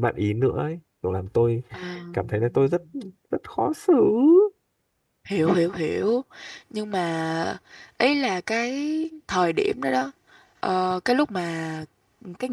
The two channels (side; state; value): both; identical; correlation 1.00